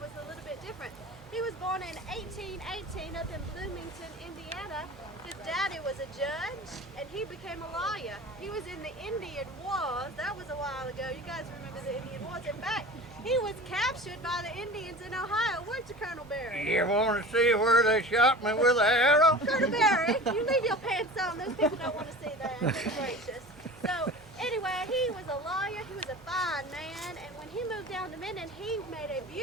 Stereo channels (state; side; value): noise; right; hum, 23 dB below the sound